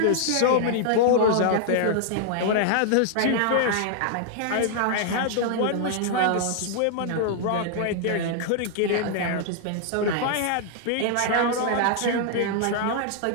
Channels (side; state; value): both; different; correlation -0.01